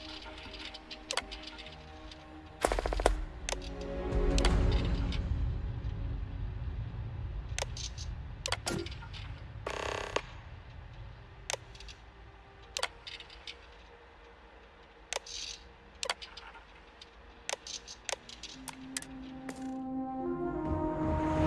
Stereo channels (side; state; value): both; identical; correlation 1.00